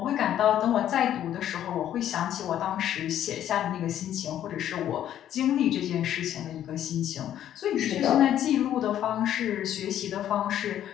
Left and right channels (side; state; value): right; quieter; 11.1 dB